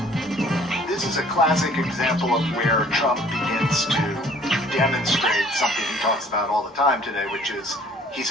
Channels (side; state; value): both; normal; correlation 0.55